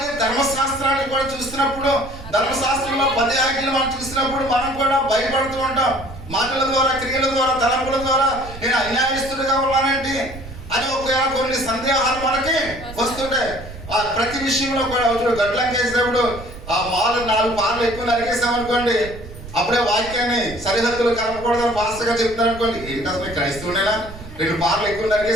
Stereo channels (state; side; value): noise; right; rumble, 14 dB below the sound